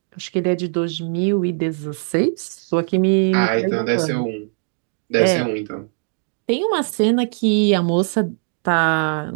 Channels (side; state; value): left; silent; 65 dB below the other